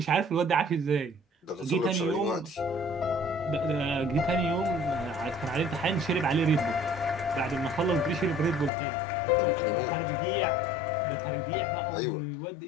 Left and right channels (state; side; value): drops out; right; at 8.7 s